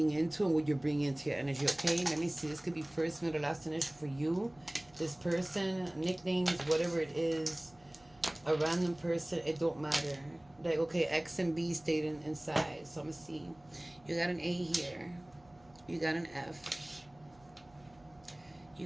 into and what you're bringing into your energy, okay? Let me see. This could be first, middle, last initial for you. This person, nicknames, whatever it is, a random person, it don't matter. Like, okay, X and B stayed inside. So I'm going to see. You got an A here. You got an F.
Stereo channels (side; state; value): right; noise; hum, 28 dB below the sound